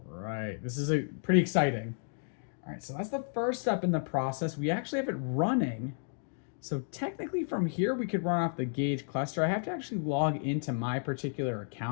right, this is pretty exciting. All right, so that's the first step in the process. We actually have it running. So technically from here, we could run off the gauge cluster. I have to actually log into my particular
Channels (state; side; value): silent; right; digital silence